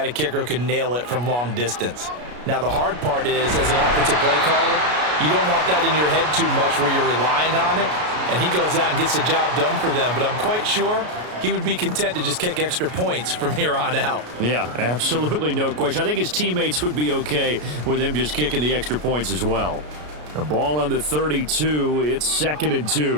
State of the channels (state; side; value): late; left; 33 ms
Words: a kicker who can nail it from long distance? Now, the hard part is, as an offensive play caller, you don't want that in your head too much where you're relying on it, and he goes out and gets the job done for them. But I'm quite sure he would be content to just kick extra points from here on out. Yeah, absolutely no question. I think his teammates would be okay with him just kicking the extra points as well. The ball on the 32, it's 2nd and